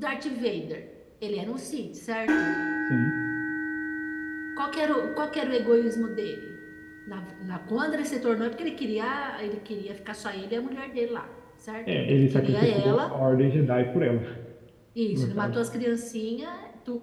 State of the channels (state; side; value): identical; both; correlation 1.00